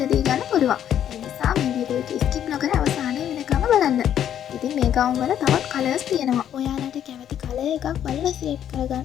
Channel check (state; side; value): quieter; right; 10.1 dB